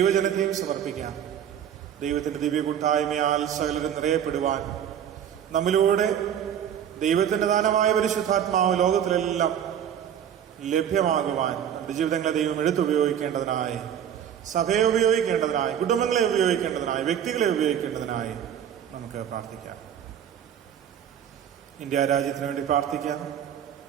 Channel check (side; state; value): left; quieter; 9.3 dB